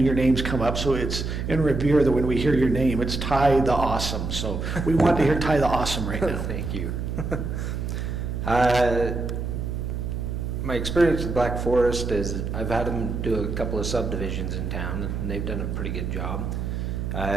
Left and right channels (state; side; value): noise; right; hum, 3 dB below the sound